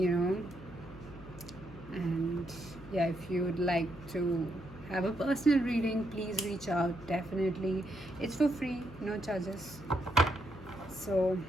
know. And yeah, if you would like to have a personal reading, please reach out. Definitely, it's for free, no charges. So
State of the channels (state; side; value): noise; left; hum, 17 dB below the sound